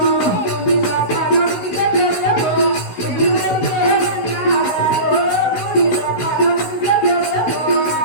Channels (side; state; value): right; late; 16 ms